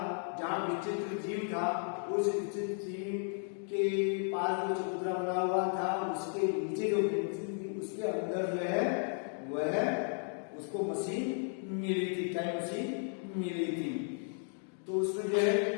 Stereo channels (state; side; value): silent; right; 55 dB below the other